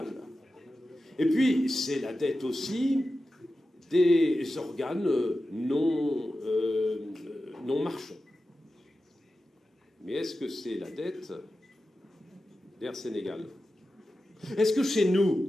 Et puis, c'est la dette aussi des organes non marchands. Mais est-ce que c'est la dette d'Air Sénégal? Est-ce que chez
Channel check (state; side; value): normal; both; correlation 0.93